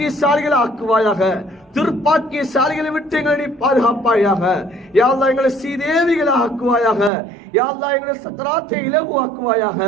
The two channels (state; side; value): drops out; left; at 7.1 s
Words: ஆக்குவாயாக. துர்ப்பாக்கியசாலிகளை விட்டு எங்களை பாதுகாப்பாயாக. யா அல்லாஹ், எங்களை சீதேவிகளாக ஆக்குவாயாக. யா அல்லாஹ், எங்களை சக்கராத்தை இலகுவாக்குவாயாக.